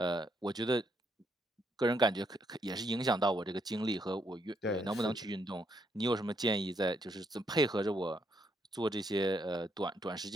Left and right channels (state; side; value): normal; both; correlation 0.75